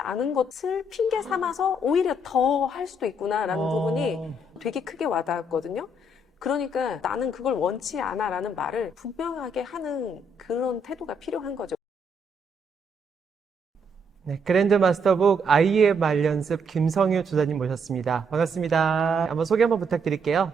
것을 핑계 삼아서 오히려 더 할 수도 있구나라는 부분이 되게 크게 와닿았거든요. 그러니까 나는 그걸 원치 않아 라는 말을 분명하게 하는 그런 태도가 필요한 거죠. 네, 그랜드 마스터북 아이의 말 연습 김성유 조사님 모셨습니다. 반갑습니다. 한번 소개 한번 부탁드릴게요.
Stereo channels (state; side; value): normal; both; correlation 0.73